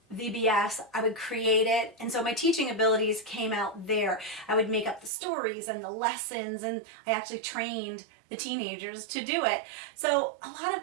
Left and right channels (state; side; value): drops out; left; at 5.1 s